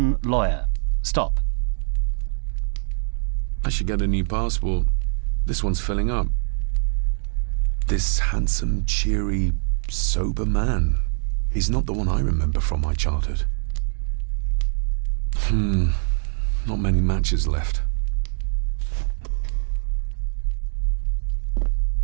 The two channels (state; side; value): silent; left; 56 dB below the other